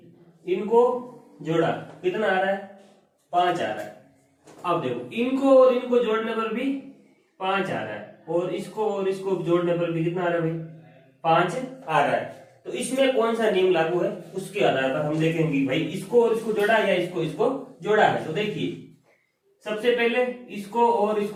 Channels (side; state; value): both; identical; correlation 1.00